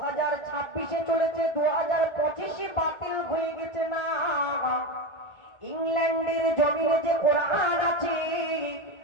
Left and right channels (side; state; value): right; late; 1.3 ms